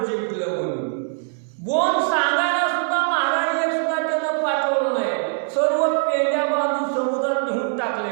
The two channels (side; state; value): left; silent; digital silence